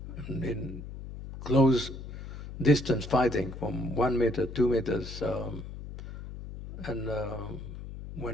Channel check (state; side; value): noise; left; hum, 10 dB below the sound